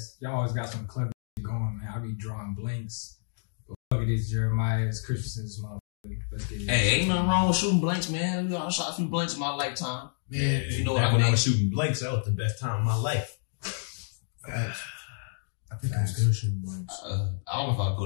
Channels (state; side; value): silent; right; digital silence